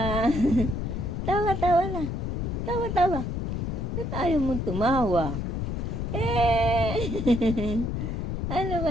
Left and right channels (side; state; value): left; noise; rumble, 2 dB below the sound